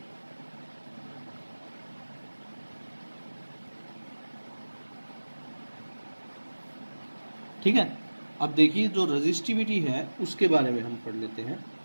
ठीक है, अब देखिए जो रेजिस्टिविटी है उसके बारे में हम पढ़ लेते हैं।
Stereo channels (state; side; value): inverted; both; correlation -1.00